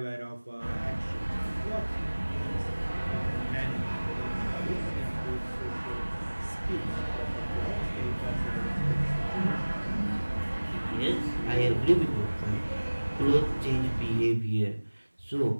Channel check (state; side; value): inverted; both; correlation -1.00